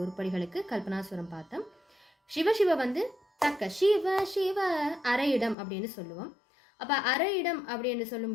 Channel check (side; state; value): right; drops out; at 5.6 s